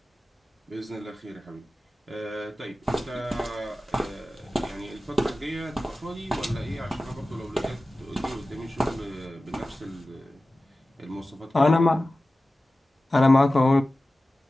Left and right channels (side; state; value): both; normal; correlation 0.96